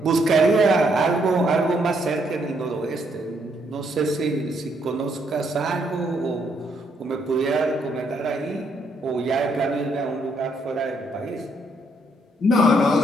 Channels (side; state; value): both; normal; correlation 0.73